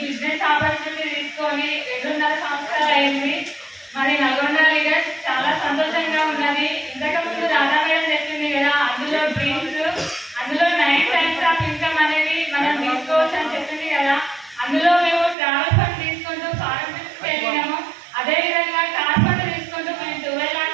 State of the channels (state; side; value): drops out; left; at 15.4 s